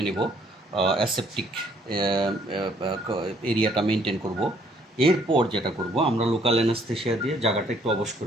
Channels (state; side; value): normal; both; correlation 0.64